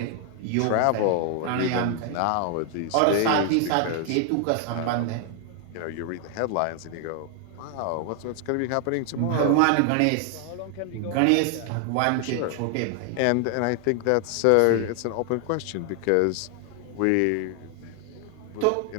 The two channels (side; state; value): both; different; correlation 0.00